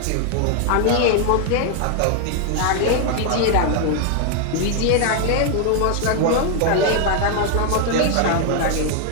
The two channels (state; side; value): different; both; correlation 0.00